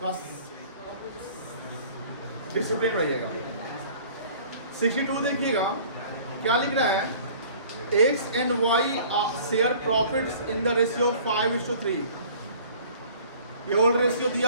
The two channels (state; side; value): inverted; both; correlation -0.50